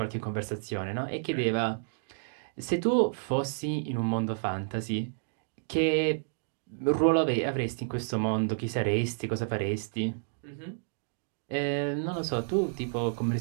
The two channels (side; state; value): left; silent; digital silence